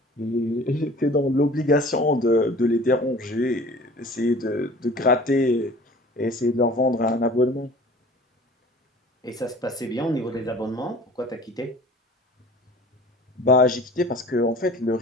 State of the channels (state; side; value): normal; both; correlation 0.45